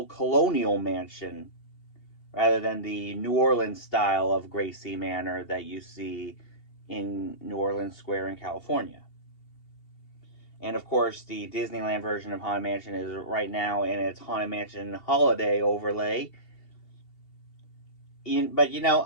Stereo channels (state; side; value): late; right; 2.8 ms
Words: colonial mansion rather than the New Orleans style of Gracie Manor that you see in New Orleans Square in California. And of course, the Disneyland version of Haunted Mansion is right now in its Haunted Mansion holiday overlay. But